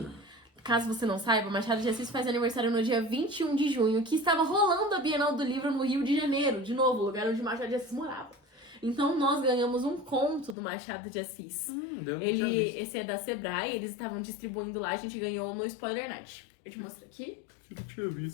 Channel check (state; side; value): drops out; right; at 10.6 s